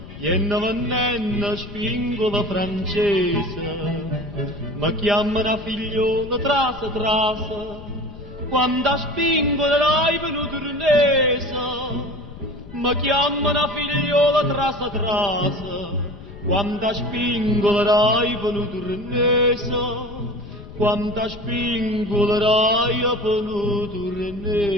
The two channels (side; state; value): left; noise; rumble, 16 dB below the sound